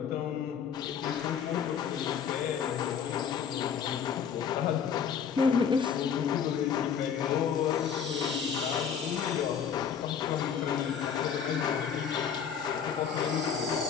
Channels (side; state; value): right; quieter; 7.5 dB